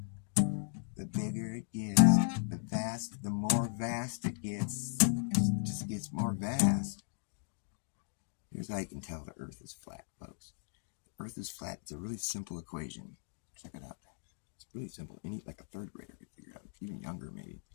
The bigger it gets, the more vast it gets. It just gets more vast. Here's how you can tell the Earth is flat, folks. The Earth is flat. It's a really simple equation. Check it out. It's really simple. Like a third grader could figure it out, even younger maybe.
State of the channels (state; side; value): silent; right; digital silence